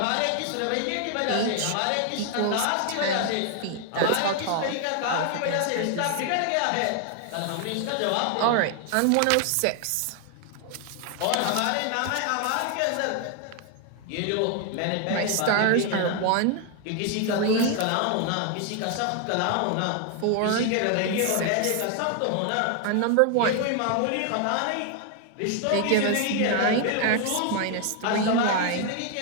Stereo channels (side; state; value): both; different; correlation 0.00